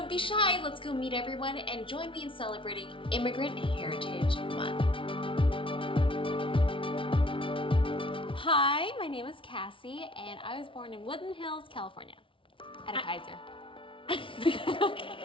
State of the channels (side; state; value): right; late; 0.25 ms